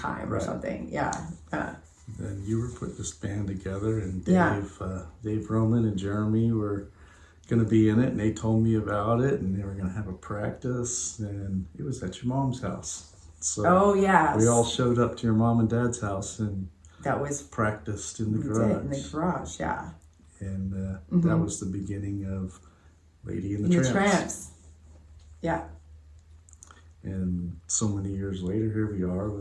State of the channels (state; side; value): identical; both; correlation 1.00